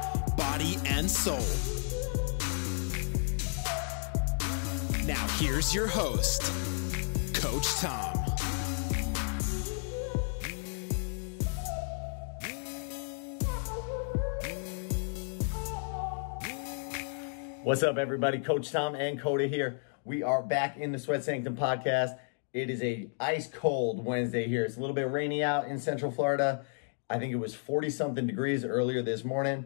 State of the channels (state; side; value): silent; right; 56 dB below the other